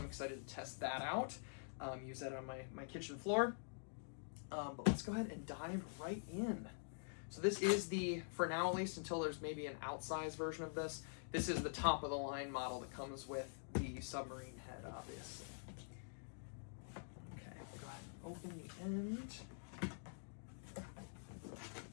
excited to test that out. Use that on my kitchen floor. But let's go ahead and dive right in. So this is the, for now at least, until there's maybe an outsized version of this, this is the top of the line model that comes with the Submarine head, obviously. Okay, go ahead and open the end.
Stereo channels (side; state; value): right; silent; digital silence